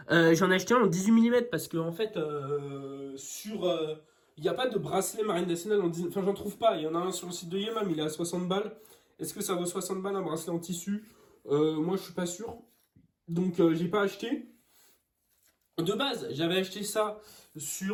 J'en ai acheté un en 18 mm parce que en fait il n'y a pas de bracelet Marine Nationale en 18. Enfin j'en trouve pas, il y en a un sur le site de Yema mais il est à 60 balles. Est-ce que ça vaut 60 balles un bracelet en tissu? Moi je suis pas sûr. Donc j'ai pas acheté. De base, j'avais acheté ça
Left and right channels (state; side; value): identical; both; correlation 1.00